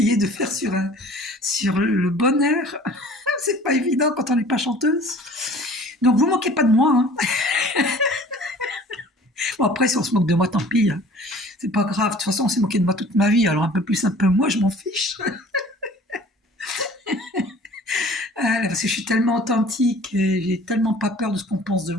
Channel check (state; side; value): normal; both; correlation 0.48